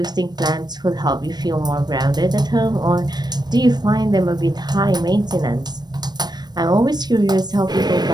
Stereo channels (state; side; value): late; left; 0.20 ms